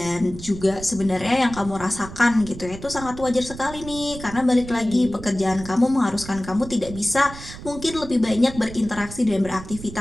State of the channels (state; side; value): noise; right; rumble, 13 dB below the sound